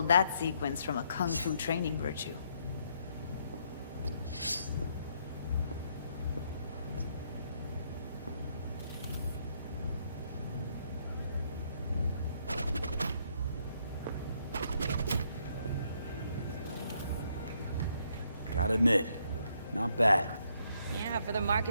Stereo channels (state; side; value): inverted; both; correlation -0.73